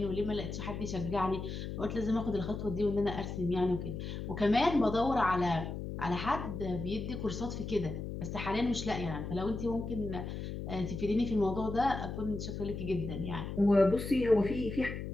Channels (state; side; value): noise; left; hum, 6 dB below the sound